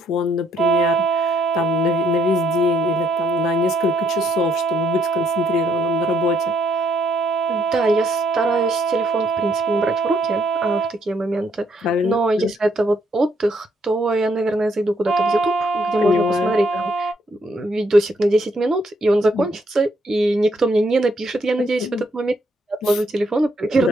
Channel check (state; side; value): normal; both; correlation 0.71